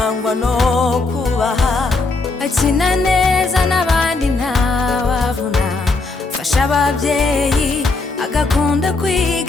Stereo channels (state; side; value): quieter; right; 3.6 dB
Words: no kubaha, akina neza n'abandi ntawavuna, fasha ababyeyi agakunda